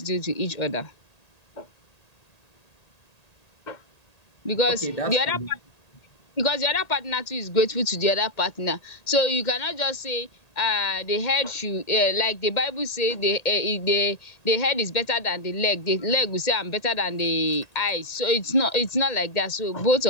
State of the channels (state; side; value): late; right; 1.8 ms